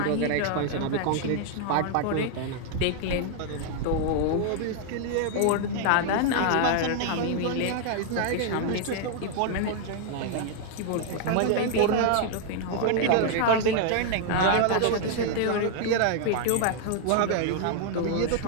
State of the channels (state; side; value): different; both; correlation 0.00